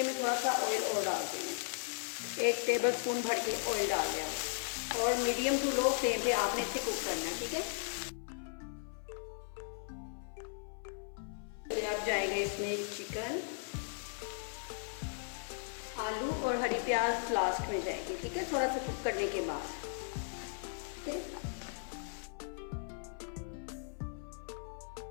मैं थोड़ा सा ऑयल और डाल दूँगी। 1 टेबलस्पून भर के ऑयल डाल दिया और मीडियम टू लो फ्लेम पे आपने इसे कुक करना है। ठीक है, फिर अब जाएगा इसमें चिकन, आलू और हरी प्याज लास्ट में जाएगी। ठीक है, थोड़ा सा कुक करने के बाद। ठीक है,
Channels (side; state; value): right; silent; 53 dB below the other